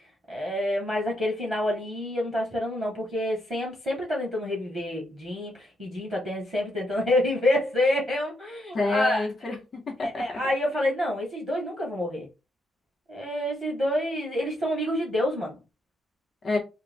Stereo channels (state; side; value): normal; both; correlation 0.78